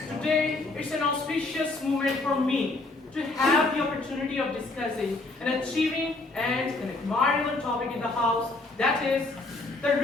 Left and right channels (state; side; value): quieter; right; 3.2 dB